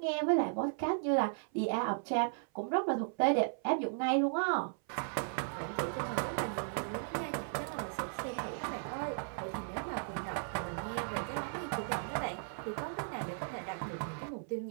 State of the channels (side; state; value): left; silent; 54 dB below the other